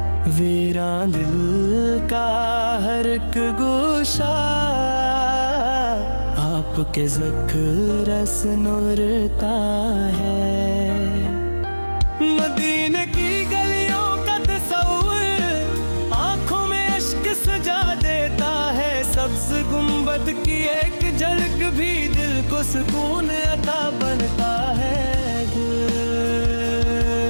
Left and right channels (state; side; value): inverted; both; correlation -1.00